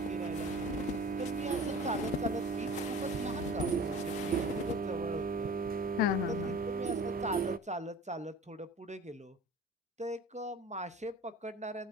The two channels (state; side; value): normal; both; correlation 0.41